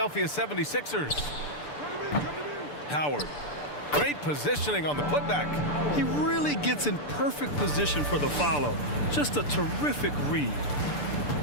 76ers. Howard. Great positioning on the putback. He really gets in perfect position for the follow. Just a terrific read.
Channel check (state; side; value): late; right; 6.8 ms